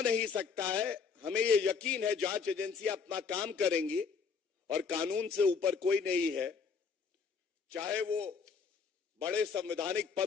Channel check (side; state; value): right; quieter; 5.6 dB